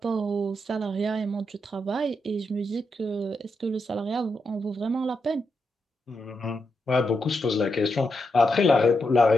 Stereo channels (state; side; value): normal; both; correlation 0.84